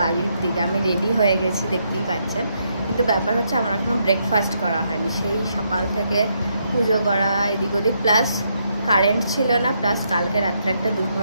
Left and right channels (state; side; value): inverted; both; correlation -0.77